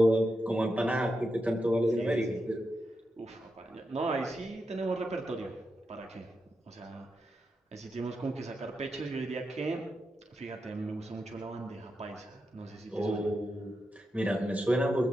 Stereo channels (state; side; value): normal; both; correlation 0.87